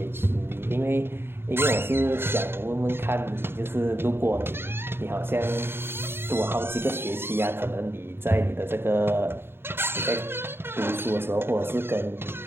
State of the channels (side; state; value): left; late; 0.11 ms